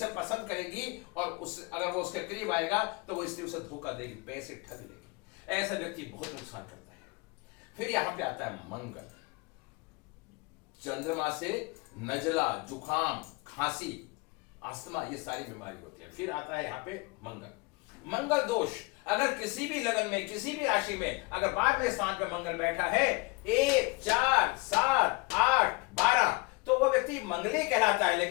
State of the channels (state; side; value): quieter; right; 26.9 dB